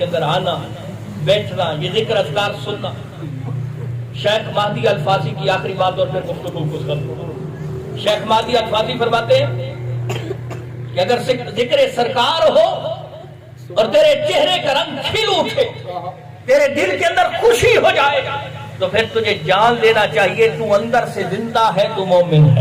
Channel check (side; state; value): both; identical; correlation 1.00